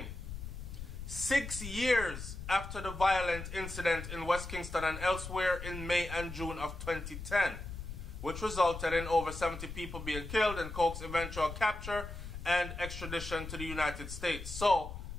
6 years after the violent incident in West Kingston and elsewhere in May and June of 2010, which resulted in over 70 people being killed and Coke's eventual capture and extradition to the United States. So,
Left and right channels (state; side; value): noise; left; rumble, 9 dB below the sound